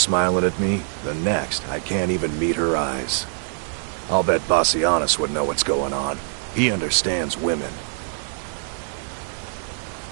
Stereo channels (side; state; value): left; silent; digital silence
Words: at me, the next, I can't even meet her eyes. I'll bet Bassianus would know what's going on. He understands women.